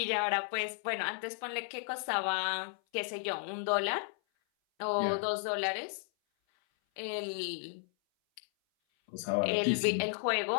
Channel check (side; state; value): right; silent; 55 dB below the other